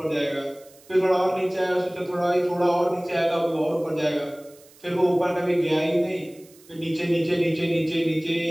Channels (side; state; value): right; noise; hiss, 26 dB below the sound